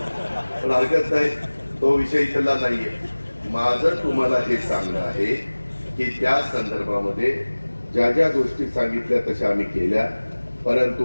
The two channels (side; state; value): both; inverted; correlation -1.00